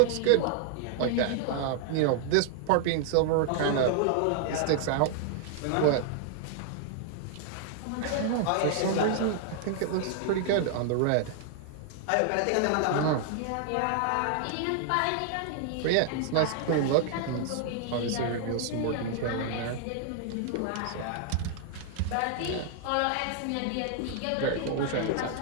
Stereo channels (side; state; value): both; different; correlation 0.00